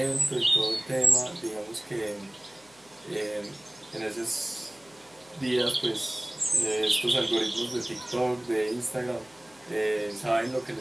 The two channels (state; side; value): noise; left; hum, 29 dB below the sound